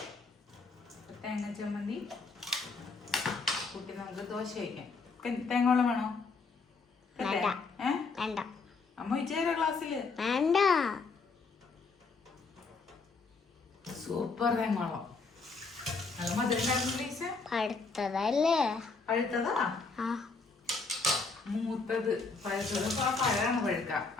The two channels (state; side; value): quieter; right; 4.3 dB